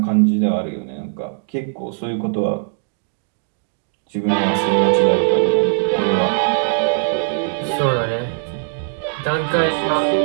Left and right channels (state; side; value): silent; left; digital silence